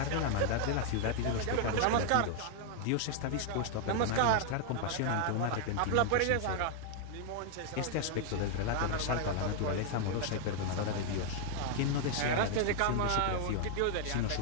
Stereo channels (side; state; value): both; different; correlation 0.00